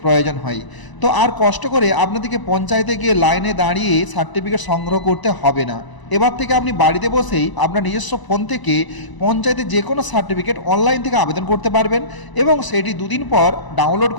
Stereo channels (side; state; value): right; late; 1.0 ms